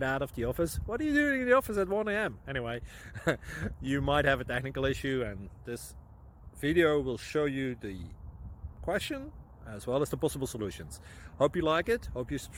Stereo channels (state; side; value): identical; both; correlation 1.00